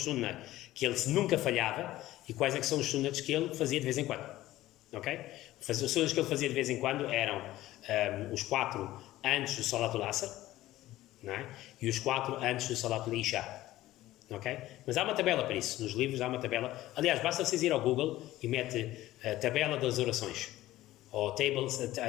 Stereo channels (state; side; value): quieter; right; 15.7 dB